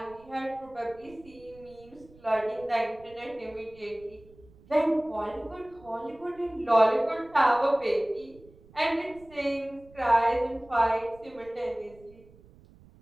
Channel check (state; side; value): noise; right; rumble, 25 dB below the sound